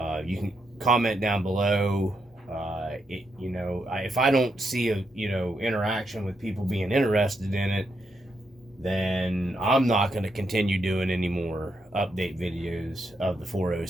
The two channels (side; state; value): both; normal; correlation 0.80